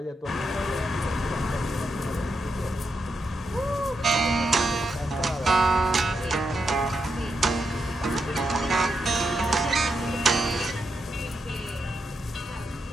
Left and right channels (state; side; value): normal; both; correlation 0.84